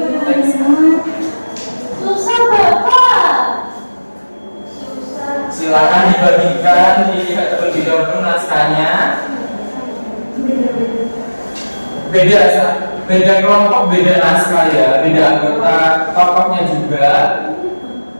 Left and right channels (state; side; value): inverted; both; correlation -1.00